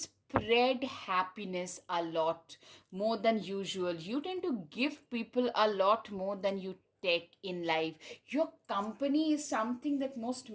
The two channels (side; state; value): both; identical; correlation 1.00